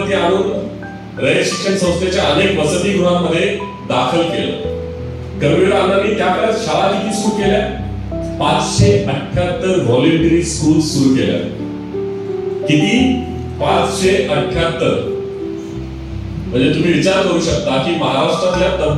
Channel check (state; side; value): identical; both; correlation 1.00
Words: आणून रयत शिक्षण संस्थेच्या अनेक वसतिगृहांमध्ये दाखल केलं. कर्मवीर अण्णांनी त्या काळात शाळा किती सुरू केल्या? 578 व्हॉलेंटरी स्कूल सुरू केल्या. किती? 578. म्हणजे तुम्ही विचार करू शकता की महाराष्ट्रातल्या